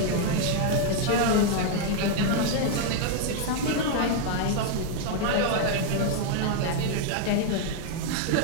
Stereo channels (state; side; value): different; both; correlation 0.00